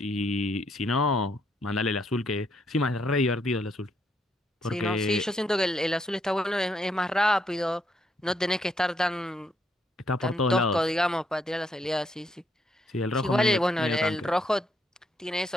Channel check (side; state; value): both; normal; correlation 0.74